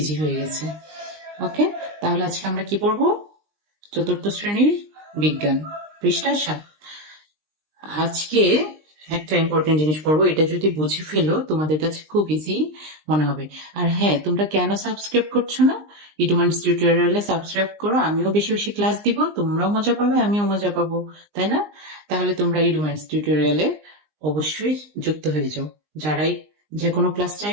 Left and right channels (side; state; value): left; late; 20 ms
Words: হয়ে গেছে। ওকে, তাহলে আজকে আমরা কি পড়বো? চতুর্থ শ্রেণীর বিজ্ঞান, পৃষ্ঠা 7। আজকে একটা ইম্পর্টেন্ট জিনিস পড়বো, এটা যদি বুঝে ফেলো তোমাদের কাছে খুব ইজি মনে হবে। আর হ্যাঁ, তোমরা কেন সাবস্ক্রাইব করছো না? ইডুমান্স টিউটোরিয়ালে সাবস্ক্রাইব করো, আমিও বেশি বেশি ক্লাস দিব, তোমরাও মজা পাবে, আমিও মজা পাবো, তাই না? তাহলে তোমরা ইডুমান্স টিউটোরিয়ালে অবশ্যই যুক্ত হয়ে যাও। যারাই যে কোনো ক্লাস